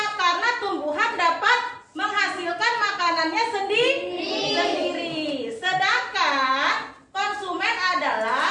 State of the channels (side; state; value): both; identical; correlation 1.00